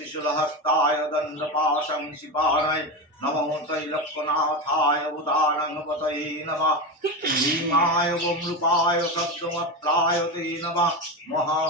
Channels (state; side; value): normal; both; correlation 0.18